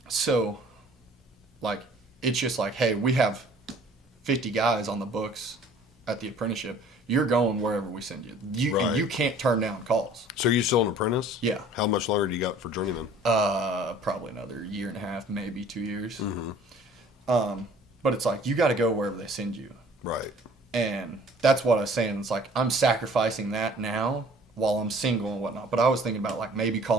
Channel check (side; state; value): both; normal; correlation 0.52